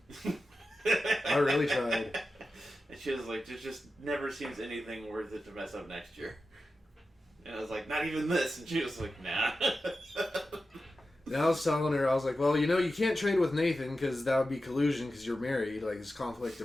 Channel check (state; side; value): normal; both; correlation 0.92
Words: I really tried. And she was like, there just never seems anything worth it to mess up next year. And I was like, not even this. And she was like, nah. And I was telling her, I was like, well, you can't trade with Nathan because that would be collusion because you're married, like, it's conflict